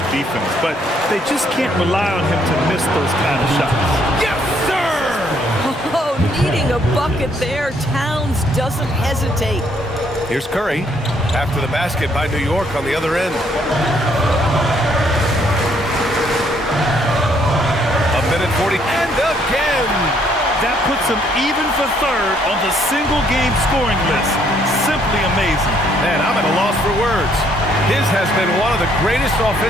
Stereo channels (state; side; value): normal; both; correlation 0.68